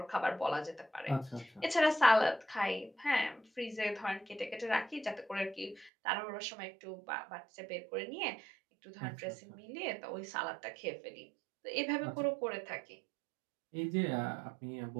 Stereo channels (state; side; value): drops out; left; at 5.9 s